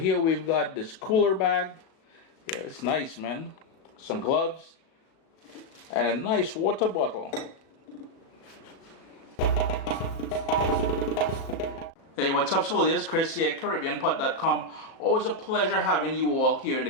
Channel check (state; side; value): late; right; 37 ms